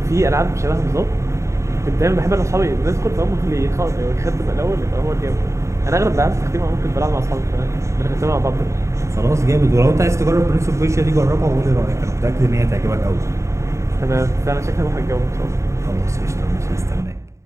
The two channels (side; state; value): left; late; 0.14 ms